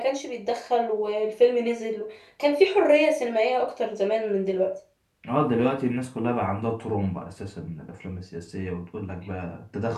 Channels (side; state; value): both; identical; correlation 1.00